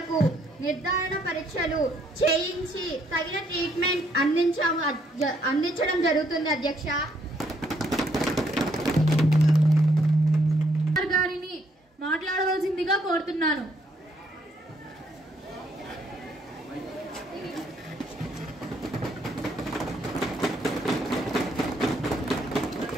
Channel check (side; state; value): both; normal; correlation 0.70